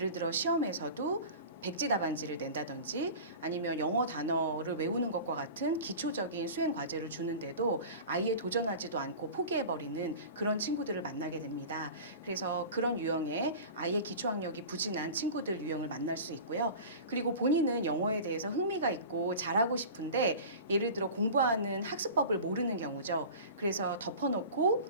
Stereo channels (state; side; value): inverted; both; correlation -0.36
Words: 들어 시험에서도 백지 답안지를 낸다든지 아니면 영어 단어를 외우는 것과 같은 기초적인 수행 과제를 주는데도 아예 도전하지도 않고 포기해버리는 그런 친구들을 만나게 됩니다. 그래서 그런 유형의 아예 기초학력이 부진한 친구들 유형을 만날 수 있고요. 그리고 본인은 영어에 대해서 흥미가 있고 잘하고 싶은데 예를 들어 공부하는 학습법을 모르는 경우죠. 그래서